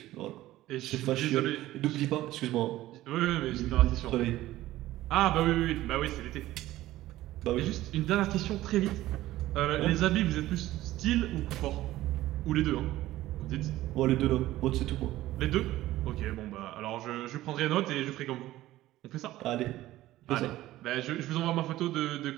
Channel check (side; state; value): left; quieter; 15.6 dB